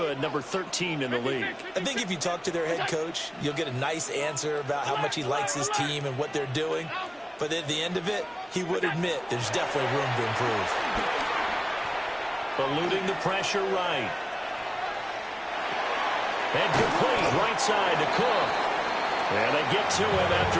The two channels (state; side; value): identical; both; correlation 1.00